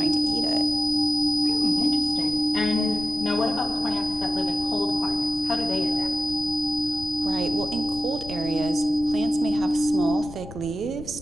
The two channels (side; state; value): left; noise; rumble, 14 dB below the sound